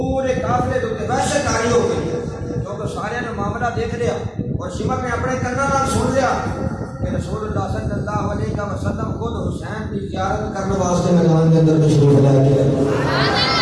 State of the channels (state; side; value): identical; both; correlation 1.00